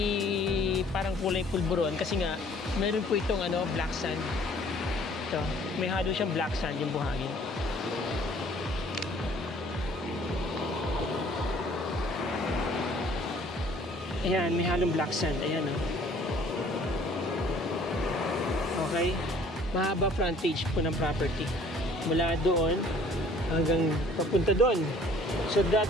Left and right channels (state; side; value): normal; both; correlation 0.56